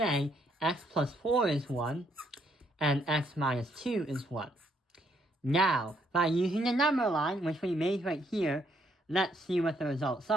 x plus 4 is 1, and x minus 2 is 1. Now, by using the number line, which we made right here, let's see what the results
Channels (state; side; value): normal; both; correlation 0.72